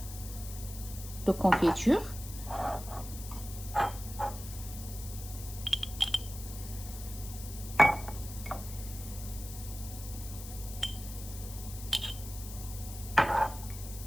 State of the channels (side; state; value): left; noise; hiss, 12 dB below the sound